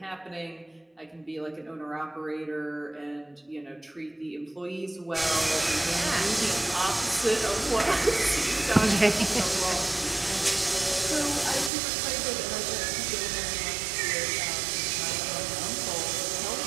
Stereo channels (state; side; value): drops out; left; at 11.7 s